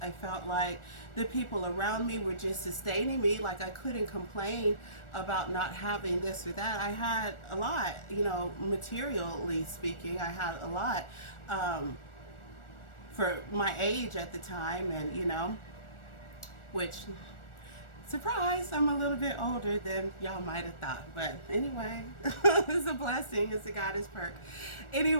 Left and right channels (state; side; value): late; right; 1.4 ms